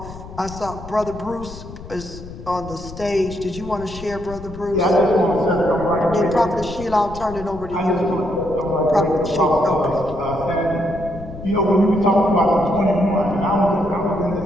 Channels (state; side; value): noise; left; rumble, 14 dB below the sound